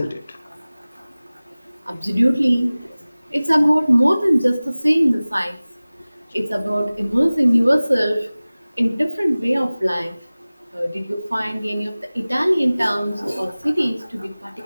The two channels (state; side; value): inverted; both; correlation -0.99